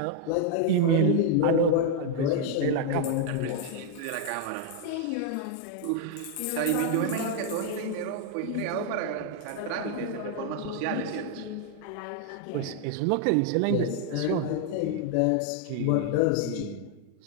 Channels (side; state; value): both; different; correlation 0.00